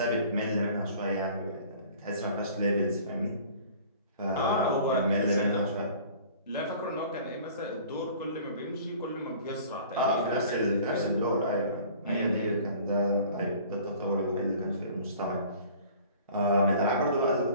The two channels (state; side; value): inverted; both; correlation -0.48